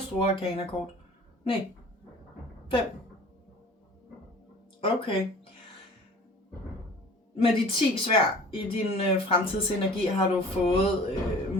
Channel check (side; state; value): both; normal; correlation 0.45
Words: store arkanakort. Nej, 5. Okay. Med de 10 sværd i din fremtidsenergi har du fået